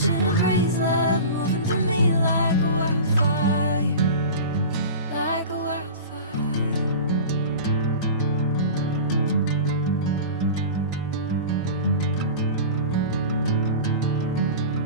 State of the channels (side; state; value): both; inverted; correlation -0.33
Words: a crazy love, moving through me like a wildfire, like a wildfire.